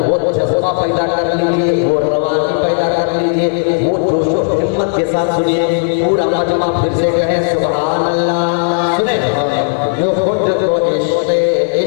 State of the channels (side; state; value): right; silent; digital silence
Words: वो जज्बा पैदा कर लीजिए, वो रवानी पैदा कर लीजिए, वो जोश और हिम्मत के साथ सुनिए। पूरा मजमा फिर से कहे सुभान अल्लाह। सुने जो खुद को इश्क़े